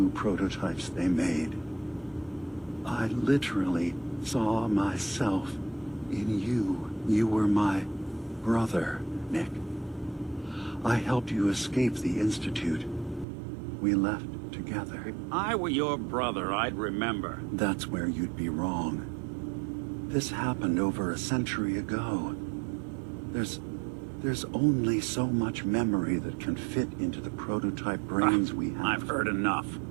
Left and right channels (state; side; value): drops out; left; at 13.2 s